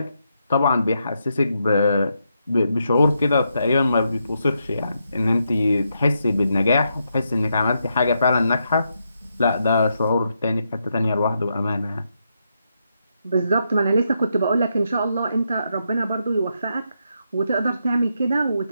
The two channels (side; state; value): both; inverted; correlation -0.81